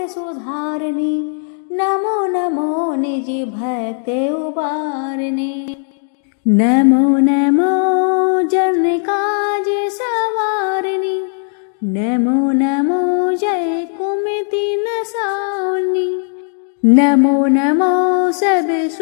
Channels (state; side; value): silent; right; 62 dB below the other